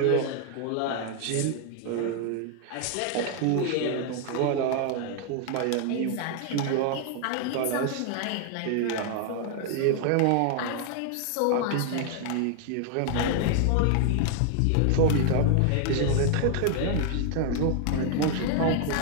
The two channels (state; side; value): different; both; correlation 0.00